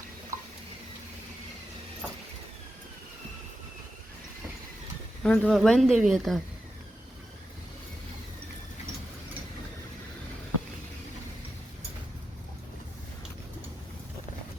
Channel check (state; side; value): normal; both; correlation 0.88